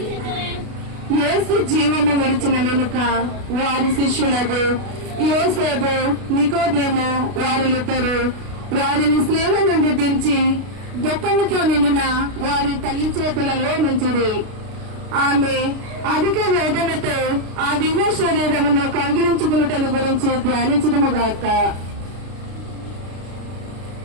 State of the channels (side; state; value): left; late; 33 ms